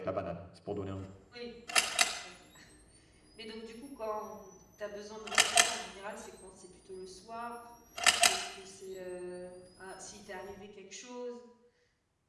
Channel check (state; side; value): identical; both; correlation 1.00